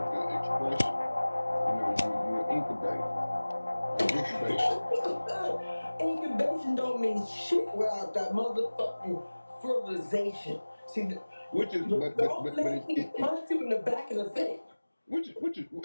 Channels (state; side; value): inverted; both; correlation -1.00